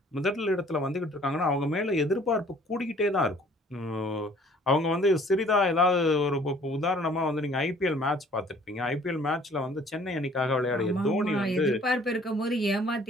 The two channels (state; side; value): normal; both; correlation 0.55